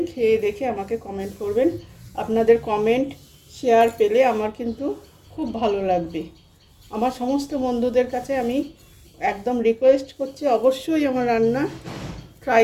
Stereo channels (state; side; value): identical; both; correlation 1.00